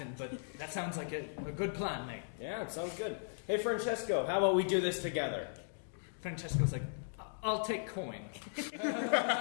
but that sounds like a good plan, mate. Yeah, it sounds good. Hey, Francesco, how about we do this together? Francesco's like, I'll take coin.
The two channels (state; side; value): silent; right; digital silence